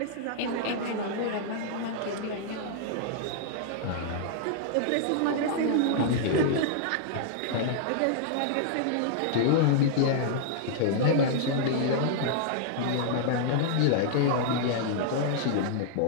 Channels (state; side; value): different; both; correlation -0.01